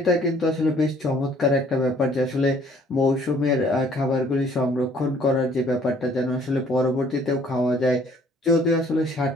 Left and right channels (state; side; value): normal; both; correlation 0.59